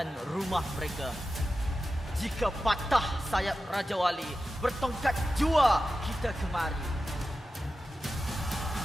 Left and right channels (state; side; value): normal; both; correlation 0.92